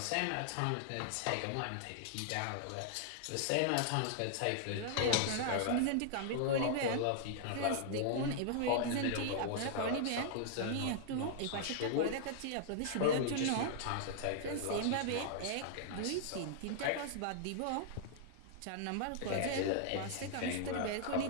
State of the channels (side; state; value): both; different; correlation -0.01